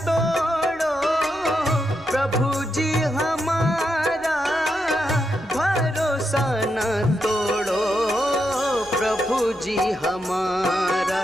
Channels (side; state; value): left; noise; rumble, 27 dB below the sound